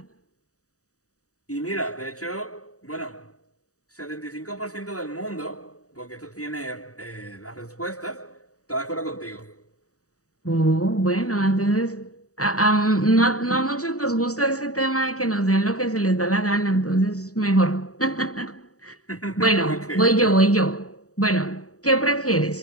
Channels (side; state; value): right; late; 0.66 ms